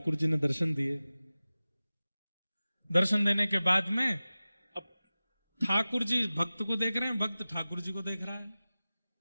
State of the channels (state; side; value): inverted; both; correlation -0.97